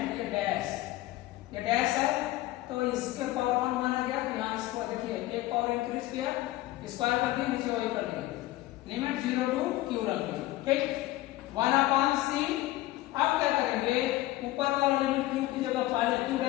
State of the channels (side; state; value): right; quieter; 16.9 dB